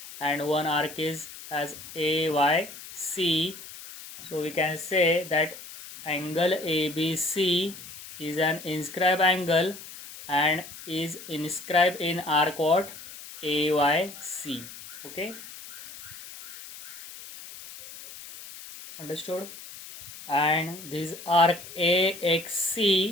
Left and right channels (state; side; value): noise; left; hiss, 14 dB below the sound